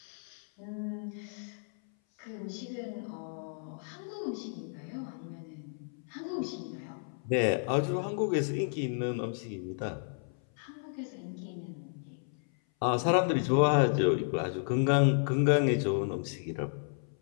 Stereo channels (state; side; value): silent; right; 56 dB below the other